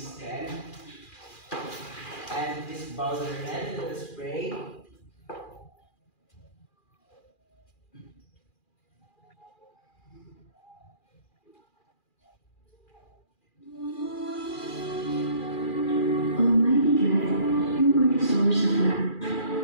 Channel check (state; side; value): late; right; 2.4 ms